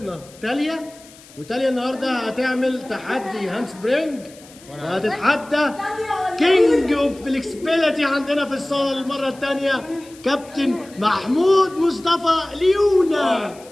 تاليا، وتاليا النهاردة هتعمل تحدي هاند سبرينج، وهتتحدى كينج اوف فليكسبيليتي عندنا في الصالة المرة التانية كابتن محمود مصطفى ليونا.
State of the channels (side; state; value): left; noise; hiss, 23 dB below the sound